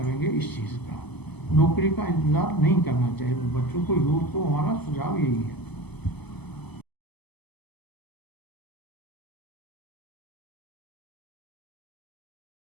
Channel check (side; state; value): right; late; 0.99 ms